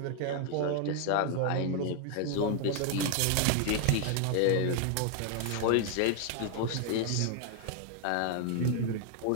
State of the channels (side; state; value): both; different; correlation 0.00